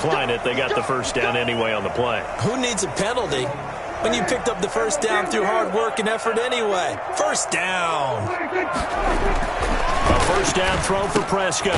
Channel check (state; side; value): identical; both; correlation 1.00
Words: it. They got the first down anyway on the play. Who needs a penalty when you picked up the first down through hard work and effort anyway? First down. A first down throw for Prescott.